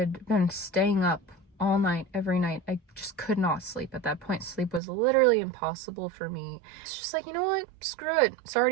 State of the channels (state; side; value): drops out; left; at 4.8 s